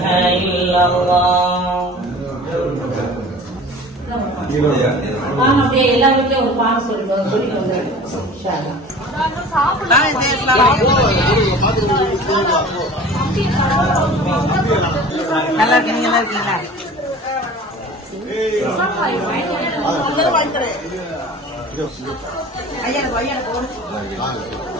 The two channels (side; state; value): both; normal; correlation 0.42